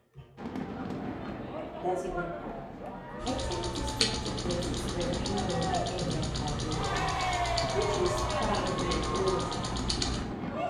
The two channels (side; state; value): both; identical; correlation 1.00